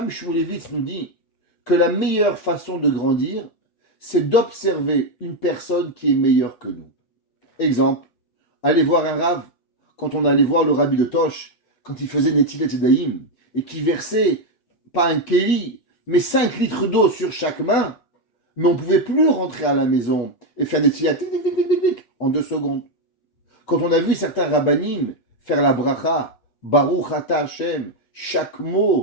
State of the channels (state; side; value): late; right; 8.0 ms